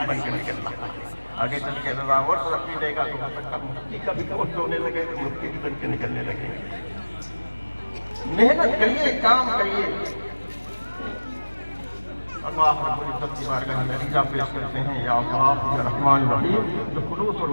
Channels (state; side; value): inverted; both; correlation -1.00